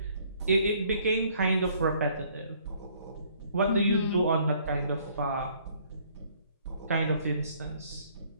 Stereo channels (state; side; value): inverted; both; correlation -0.62